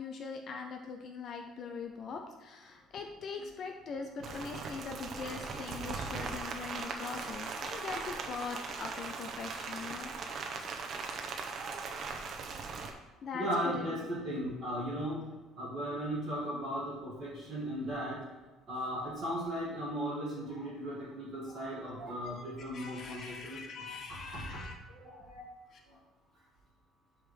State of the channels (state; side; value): normal; both; correlation 0.54